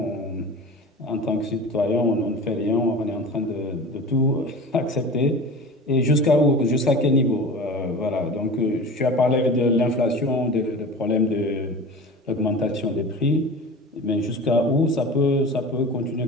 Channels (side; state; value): both; normal; correlation 0.35